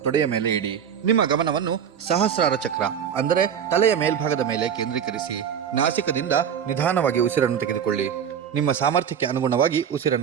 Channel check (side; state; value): left; quieter; 8.2 dB